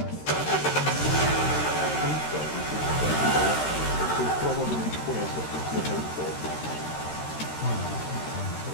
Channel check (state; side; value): late; right; 13 ms